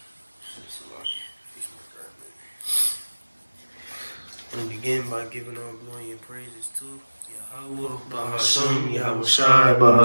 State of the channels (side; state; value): both; inverted; correlation -1.00